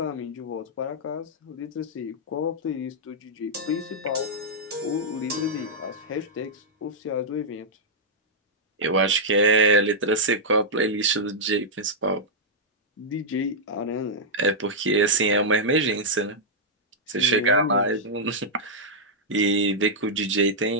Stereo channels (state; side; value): normal; both; correlation -0.07